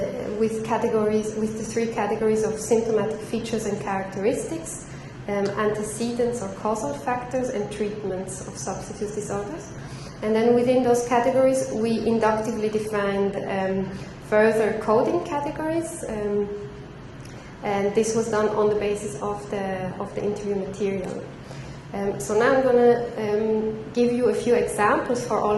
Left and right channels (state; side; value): identical; both; correlation 1.00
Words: with the three categories of symptomatic features and characteristics, antecedents or causal factors, and treatments of substance use disorders. And then within those categories, we inductively defined further coding categories, and this was done on the basis of the interview material. So now I'm going to give you a few examples for all